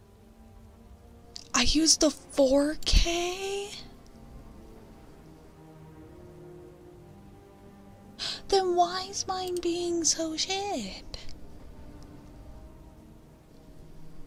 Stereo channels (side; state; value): both; identical; correlation 1.00